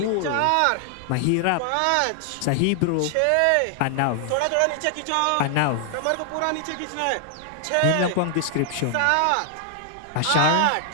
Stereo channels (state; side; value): different; both; correlation 0.00